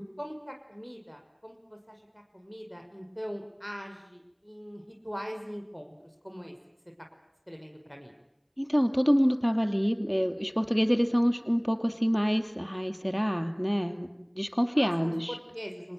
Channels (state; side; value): identical; both; correlation 1.00